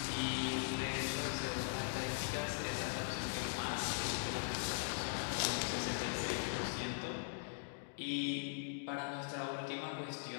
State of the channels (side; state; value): right; silent; digital silence